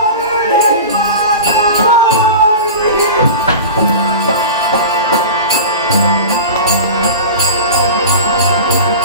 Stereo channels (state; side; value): inverted; both; correlation -0.31